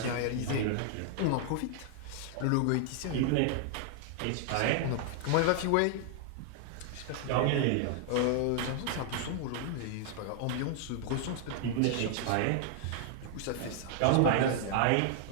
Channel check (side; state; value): both; different; correlation 0.00